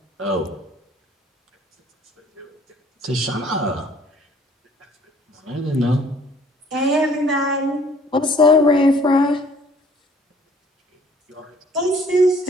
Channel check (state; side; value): normal; both; correlation 0.57